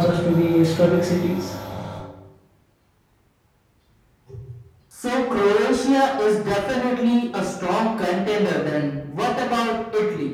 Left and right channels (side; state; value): both; identical; correlation 1.00